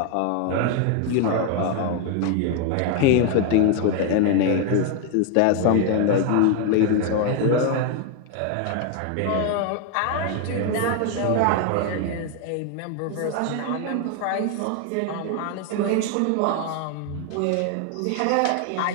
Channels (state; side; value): different; both; correlation 0.00